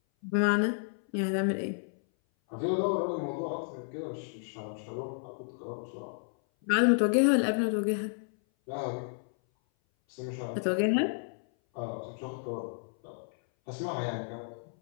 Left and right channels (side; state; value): right; silent; 57 dB below the other